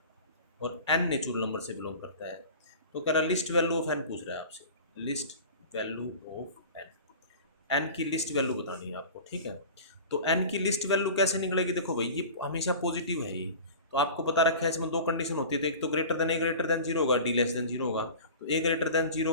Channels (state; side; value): inverted; both; correlation -0.37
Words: और n नेचुरल नंबर से बिलोंग करता है। तो कह रहा लिस्ट वैल्यू ऑफ n पूछ रहा है आपसे, लिस्ट वैल्यू ऑफ n की लिस्ट वैल्यू बतानी है आपको, ठीक है। तो n की लिस्ट वैल्यू कैसे निकलेगी, देखो भाई ये हमेशा पॉजिटिव है ये, तो आपको पता रखा है इसमें दो कंडीशन होती है, तो एक तो ग्रेटर देन जीरो होगा, डी लेस देन जीरो होगा। तो ए ग्रेटर देन